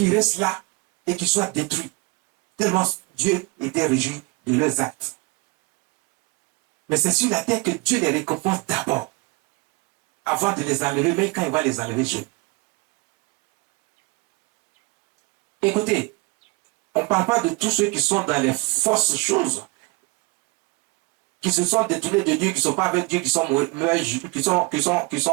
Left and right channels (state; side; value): quieter; left; 26.7 dB